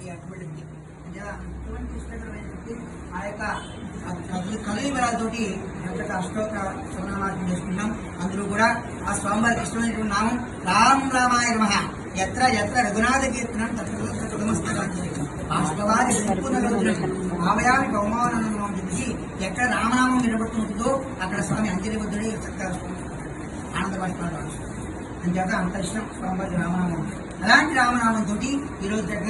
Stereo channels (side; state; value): both; identical; correlation 1.00